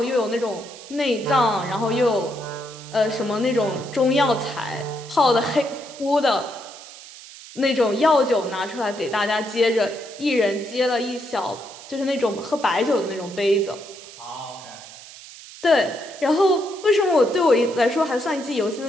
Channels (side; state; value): right; noise; hiss, 17 dB below the sound